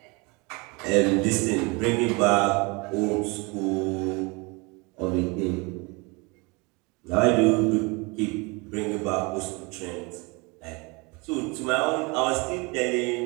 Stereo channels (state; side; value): quieter; left; 27.9 dB